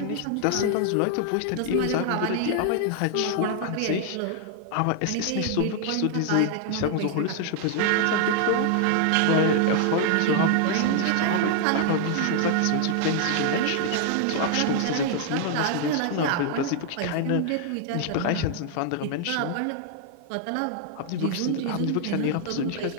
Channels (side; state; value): both; different; correlation 0.00